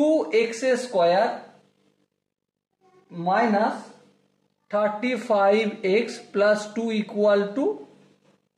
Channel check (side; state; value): both; identical; correlation 1.00